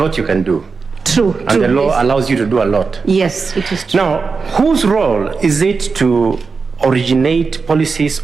you can do. True. And the law allows you to do a lot. Yes, it is true. Now, whose role is it to originate policies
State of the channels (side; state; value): left; quieter; 4.8 dB